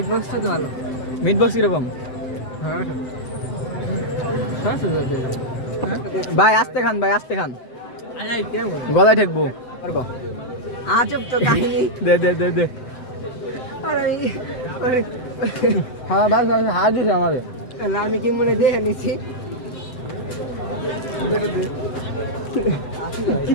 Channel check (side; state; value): right; late; 7.9 ms